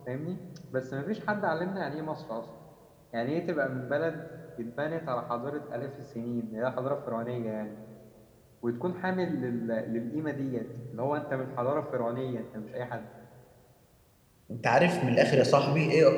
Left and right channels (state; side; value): identical; both; correlation 1.00